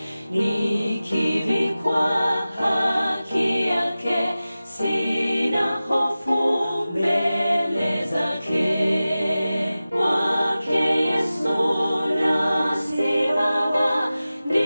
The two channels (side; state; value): both; inverted; correlation -0.96